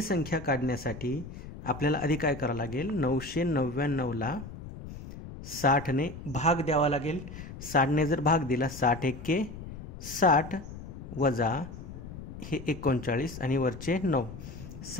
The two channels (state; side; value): noise; left; rumble, 12 dB below the sound